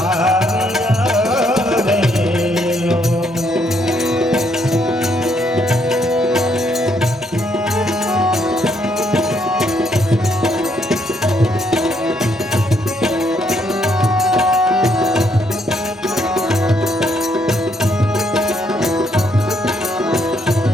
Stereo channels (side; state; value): both; normal; correlation 0.72